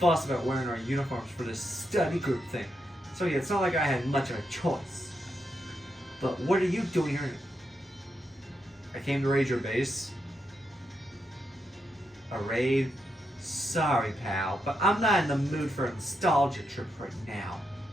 about wearing our uniforms for this study group thing, so yeah, it's not like I had much of a choice. But what are you doing here? I came to raid your base. A raid? Sorry, pal, but I'm not in the mood for a nostalgia trip right now.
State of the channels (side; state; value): both; normal; correlation 0.83